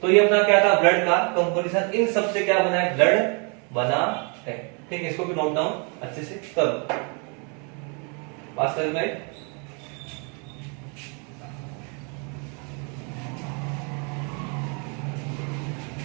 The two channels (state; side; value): quieter; left; 35.8 dB